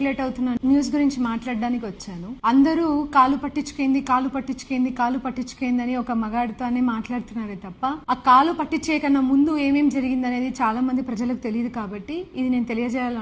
అవుతున్న న్యూస్ గురించి మాట్లాడడానికి వచ్చాను. అందరూ కాలు పట్టించుకేంది అని ఒక మగాడితోనే మాట్లాడుతున్నారే తప్ప ఆ కాలు పట్టించే కన్నా ముందు ఏమేం జరిగింది అనేది చాలా మంది ప్రజలకు తెలియదు కాబట్టి ఇది నేను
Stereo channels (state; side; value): identical; both; correlation 1.00